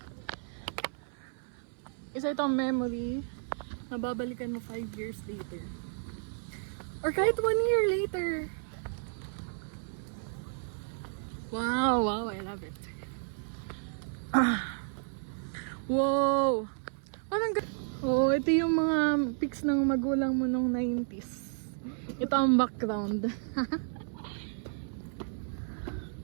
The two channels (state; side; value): silent; left; 56 dB below the other